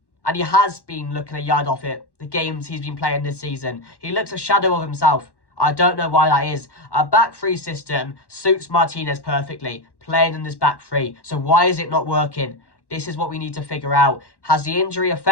And he has been looking a yard off it the games he's been playing this season. He looks a shadow of himself. I don't know why that is. A back three system suits Martinez perfectly, playing in this back three. So why is it not working? This is what we need to figure out. Has the injury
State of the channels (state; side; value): late; right; 1.1 ms